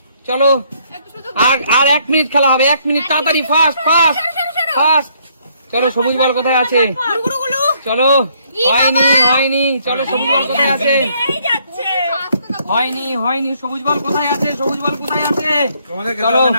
একটু সুযোগ আর 1 মিনিট খেলা হবে। 1 মিনিট, তাড়াতাড়ি, ফাস্ট। চলো, সবুজ বল কোথায় আছে? গুলু। চলো, হয়নি। চলো, সবুজ বল কোথায় আছে? এই যাচ্ছে। হয়নি। সবুজ বল কোথায় আছে? তোমাদের খেতে চলো। হবে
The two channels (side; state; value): both; inverted; correlation -0.68